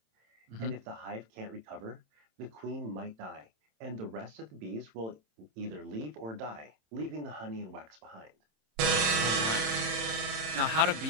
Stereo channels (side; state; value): left; late; 27 ms